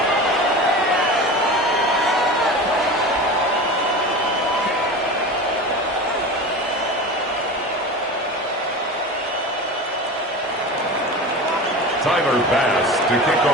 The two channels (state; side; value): normal; both; correlation 0.31